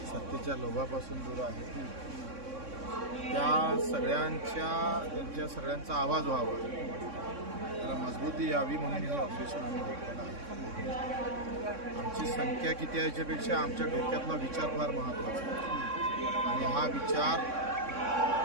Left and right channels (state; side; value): late; left; 3.6 ms